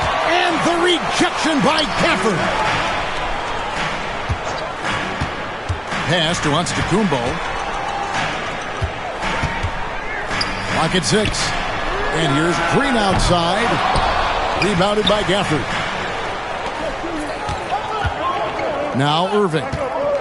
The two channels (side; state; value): both; identical; correlation 1.00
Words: And the rejection by Gafford. Pass to Antetokounmpo. Clock at 6. And here's Green outside. Rebounded by Gafford. Now Irving.